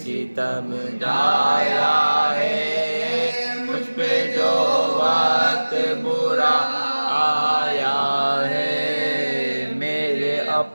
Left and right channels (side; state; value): both; inverted; correlation -1.00